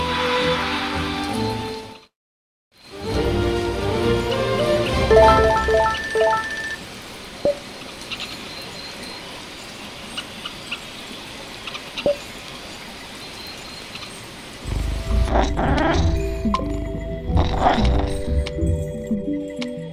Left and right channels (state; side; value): identical; both; correlation 1.00